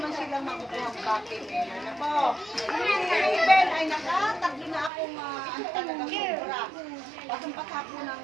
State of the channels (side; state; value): left; drops out; at 4.9 s